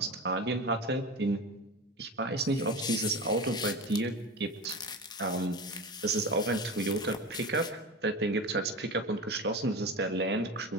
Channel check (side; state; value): both; normal; correlation 0.27